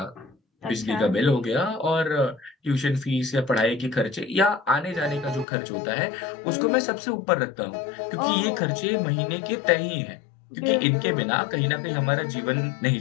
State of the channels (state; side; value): drops out; right; at 5.5 s